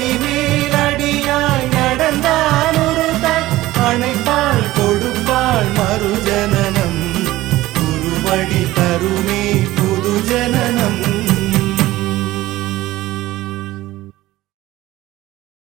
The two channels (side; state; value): left; quieter; 16.8 dB